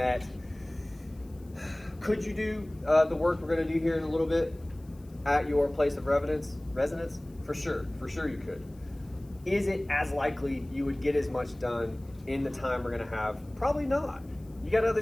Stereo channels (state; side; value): noise; left; hiss, 30 dB below the sound